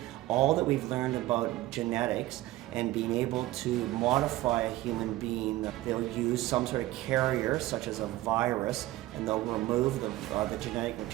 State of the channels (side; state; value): left; quieter; 16.8 dB